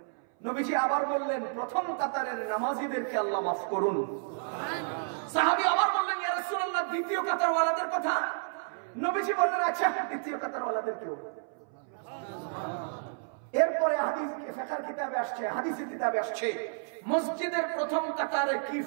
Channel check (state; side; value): silent; left; 57 dB below the other